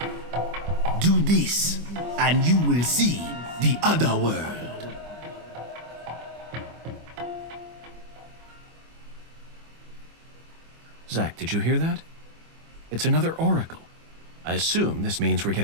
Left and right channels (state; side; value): late; left; 25 ms